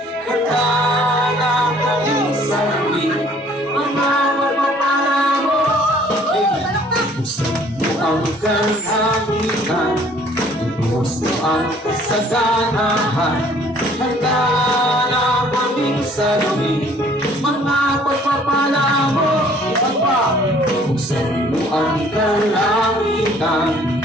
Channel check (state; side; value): normal; both; correlation 0.57